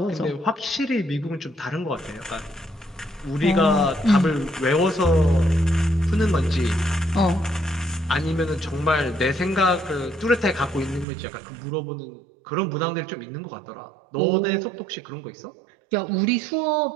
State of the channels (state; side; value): drops out; left; at 11.1 s